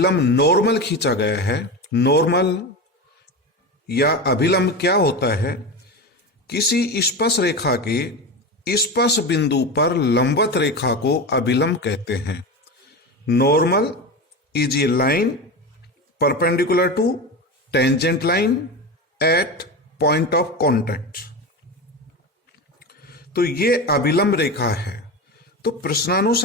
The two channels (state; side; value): normal; both; correlation 0.23